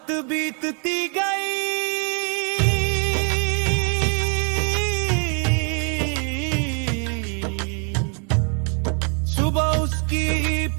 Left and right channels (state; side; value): quieter; left; 39.0 dB